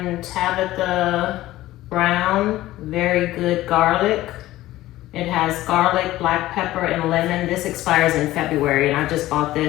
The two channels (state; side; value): quieter; right; 15.9 dB